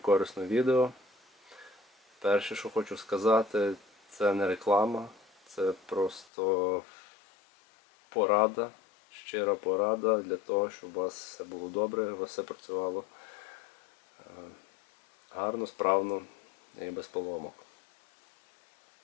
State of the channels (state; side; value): drops out; right; at 6.2 s